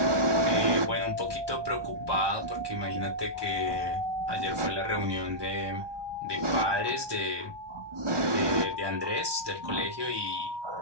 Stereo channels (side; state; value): left; late; 1.2 ms